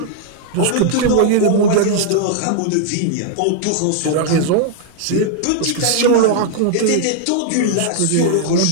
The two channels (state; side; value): different; both; correlation -0.01